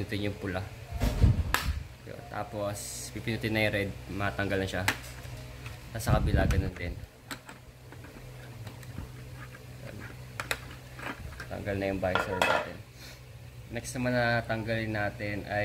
yung pula. Yun. Tapos, pipinutin na yung red. Matanggal na siya. Tapos sa kabila, ganun din. Ayan. Tanggal na yung visor natin. Next naman na tanggalin natin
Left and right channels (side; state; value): both; identical; correlation 1.00